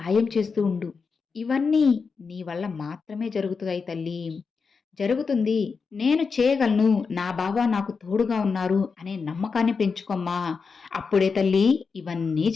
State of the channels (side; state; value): right; quieter; 5.1 dB